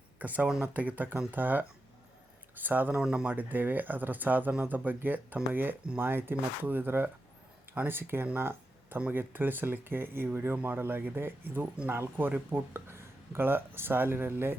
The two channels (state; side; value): normal; both; correlation 0.89